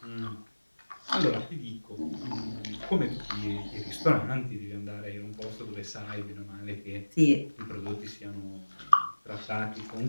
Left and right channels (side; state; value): both; inverted; correlation -1.00